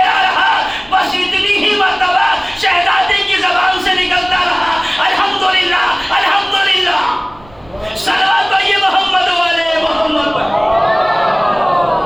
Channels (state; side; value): noise; right; rumble, 26 dB below the sound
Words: رہا، بس اتنی ہی مرتبہ شہزادی کی زبان سے نکلتا رہا الحمدللہ الحمدللہ. صلوات پڑھیے محمد والے محمد پر.